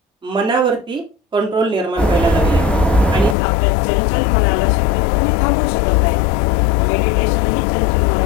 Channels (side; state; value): right; drops out; at 3.4 s